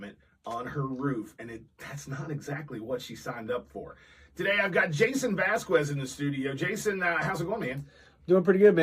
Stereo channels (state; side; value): identical; both; correlation 1.00